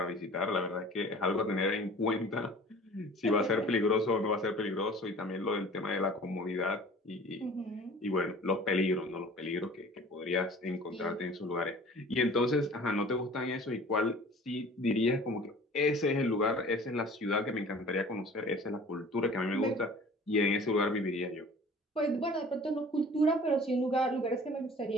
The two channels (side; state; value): both; normal; correlation 0.46